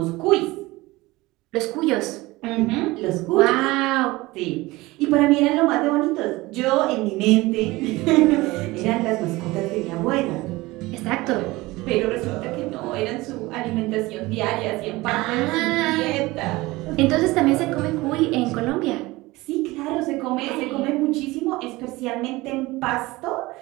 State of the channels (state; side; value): quieter; left; 20.6 dB